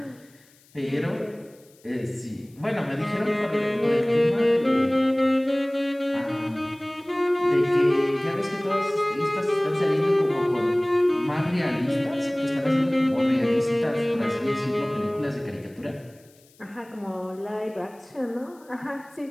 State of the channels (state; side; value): noise; left; hiss, 30 dB below the sound